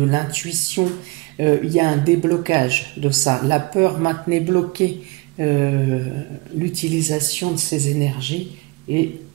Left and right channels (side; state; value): left; quieter; 25.0 dB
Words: l'intuition, il y a un déblocage de ça. La peur maintenait bloquée l'utilisation de ces énergies, et